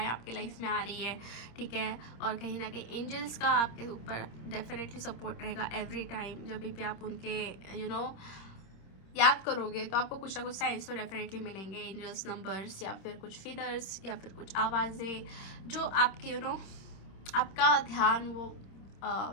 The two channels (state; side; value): late; right; 26 ms